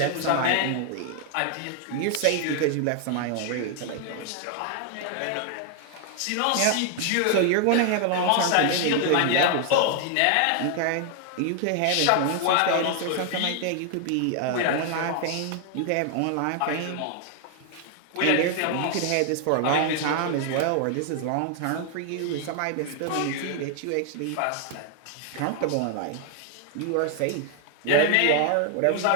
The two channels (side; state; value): both; different; correlation 0.00